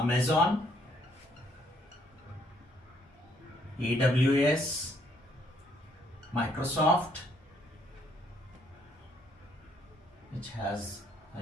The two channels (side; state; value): both; normal; correlation 0.68